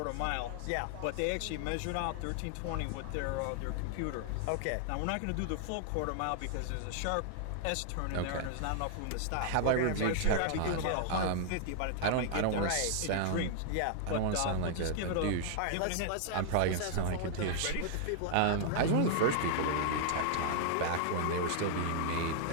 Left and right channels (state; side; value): different; both; correlation -0.01